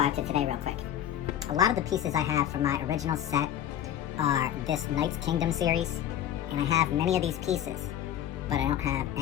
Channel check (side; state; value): right; quieter; 10.9 dB